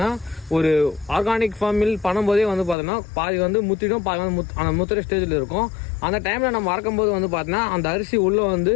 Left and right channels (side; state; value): right; drops out; at 2.8 s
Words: ஒரு ஆர்கானிக் ஃபார்மில் பண்ணும்போதே வந்து பார்த்தோன்னா பாதி வந்து முத்திடும், பாதி வந்து அந்த முத்துற ஸ்டேஜில் இருக்கும். அந்த டைமில் நம்ம அறக்கும் போது வந்து பார்த்தோன்னா அந்த அரிசி உள்ளே வந்து